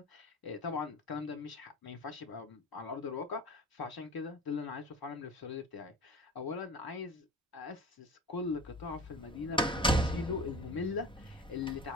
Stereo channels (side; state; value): both; normal; correlation 0.37